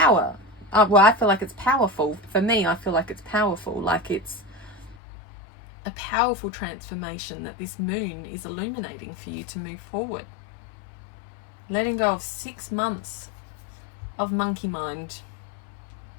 Well, I feel like it's powerful. For me, I feel like it's powerful. Like it's a powerful transformation that this moon is illuminating for you to move forward. Letting go of 6 months of monkey mind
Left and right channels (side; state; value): right; drops out; at 5.0 s